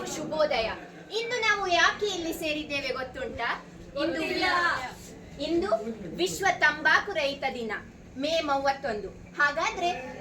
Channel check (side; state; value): both; identical; correlation 1.00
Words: ಶುಭೋದಯ. ಇಂದು ನಾವು ಯಾಕೆ ಇಲ್ಲಿ ಸೇರಿದ್ದೇವೆ ಗೊತ್ತುಂಟಾ? ಇಂದು ವಿಶ್ವ ತಂಬಾಕು ರಹಿತ ದಿನ, ಮೇ 31. ಹಾಗಾದ್ರೆ